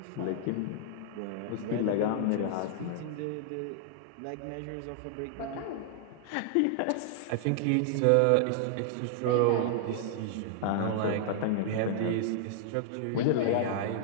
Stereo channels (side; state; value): both; different; correlation -0.01